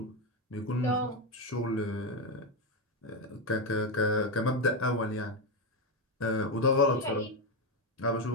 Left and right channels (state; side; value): normal; both; correlation 0.09